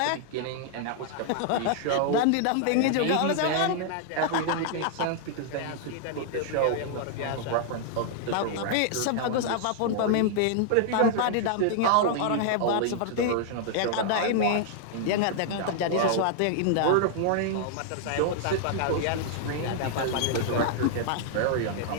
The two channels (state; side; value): different; both; correlation 0.00